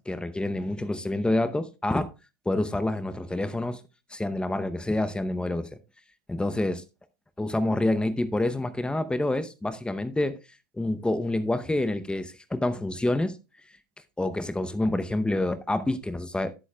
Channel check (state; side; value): normal; both; correlation 0.94